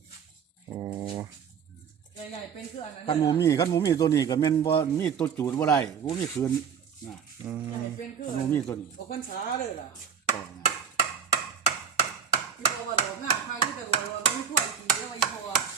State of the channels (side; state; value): left; quieter; 7.4 dB